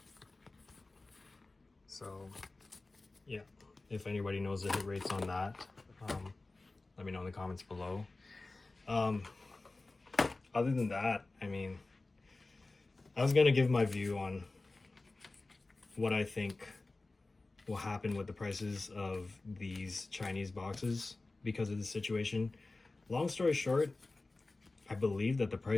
So yeah, if anybody knows the hit rates on that, let me know in the comments below. Other than that, I mean, I was gonna give my view on what I think will happen with the prices of these Chinese boxes because of the situation. Long story short, I believe that the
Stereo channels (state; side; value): quieter; right; 3.3 dB